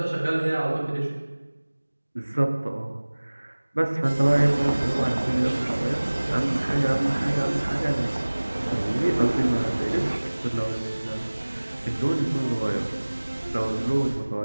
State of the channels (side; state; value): both; inverted; correlation -1.00